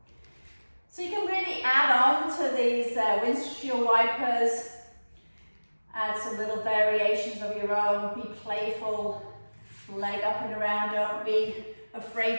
So you can really add on to these windshield wipers. Add some little variations of your own. Be playful. Leg up and around. Don't be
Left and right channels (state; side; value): inverted; both; correlation -1.00